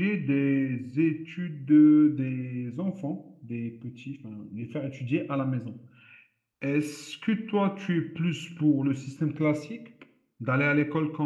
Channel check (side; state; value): both; identical; correlation 1.00